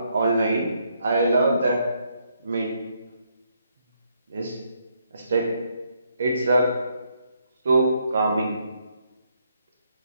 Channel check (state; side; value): inverted; both; correlation -0.75